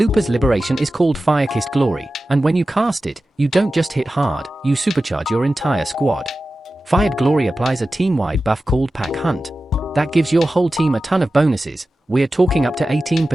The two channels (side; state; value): both; normal; correlation 0.94